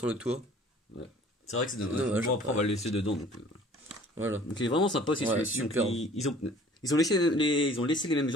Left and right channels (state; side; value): normal; both; correlation 0.51